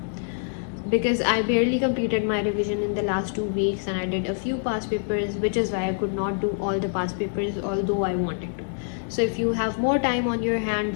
because I barely completed my revision in the last 2 weeks, and I did a few past papers, which is why I could not do all the past papers although I wanted to. So if you have more time on your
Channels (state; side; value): silent; right; digital silence